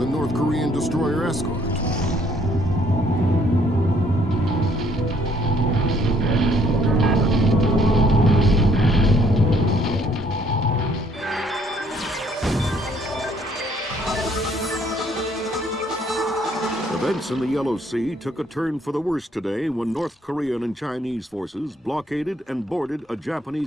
a North Korean destroyer escort. Events in the Yellow Sea took a turn for the worse today when North Korean and Chinese forces blockaded and boarded a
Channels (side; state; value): both; normal; correlation 0.65